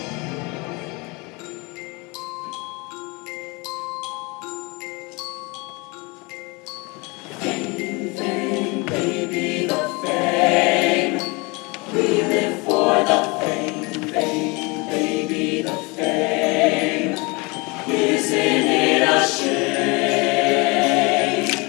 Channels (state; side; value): quieter; right; 27.2 dB